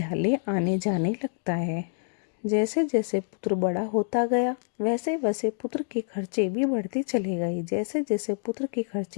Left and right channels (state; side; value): silent; right; digital silence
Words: आने जाने लगता है। जैसे जैसे पुत्र बड़ा होता गया वैसे वैसे पुत्र के खर्चे भी बढ़ते चले गए। जैसे जैसे पुत्र के